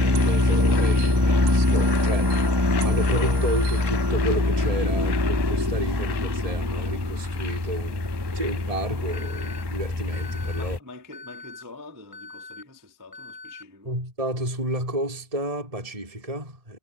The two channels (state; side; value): late; left; 1.2 ms